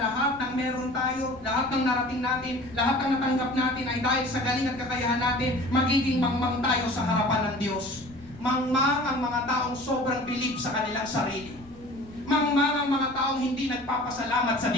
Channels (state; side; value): noise; left; rumble, 22 dB below the sound